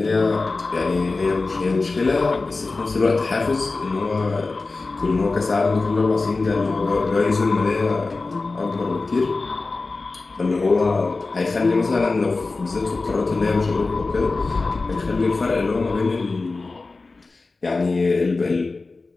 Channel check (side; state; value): right; quieter; 3.7 dB